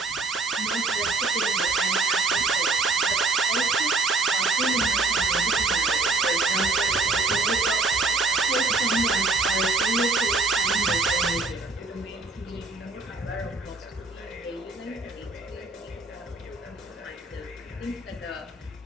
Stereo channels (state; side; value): quieter; left; 3.6 dB